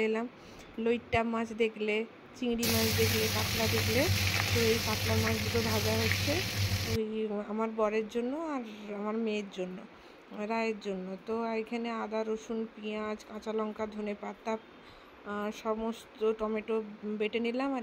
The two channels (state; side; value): identical; both; correlation 1.00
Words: এলাম। লইট্টা মাছ দেখলে, চিংড়ি মাছ দেখলে, কাতলা দেখলে, তো এই কাতলা মাছ দুটো ভাজা হচ্ছে ওই আমার বরের জন্য আর আমার মেয়ের জন্য, রায়ের জন্য। তো এখানে আদা, রসুন, পেঁয়াজ, কাঁচা লঙ্কা, ধনেপাতা, সমস্ত টমেটো বেটে নিলাম। আর